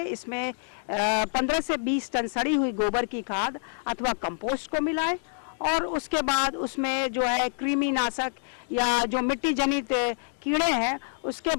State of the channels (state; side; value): silent; right; digital silence